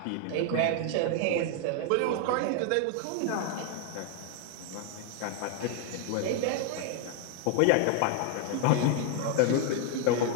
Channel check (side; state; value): both; different; correlation 0.00